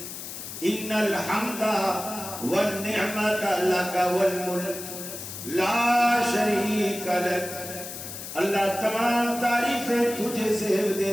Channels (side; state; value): left; noise; hiss, 9 dB below the sound